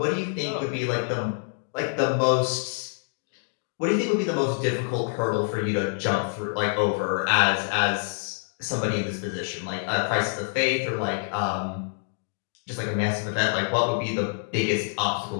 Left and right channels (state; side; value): silent; right; digital silence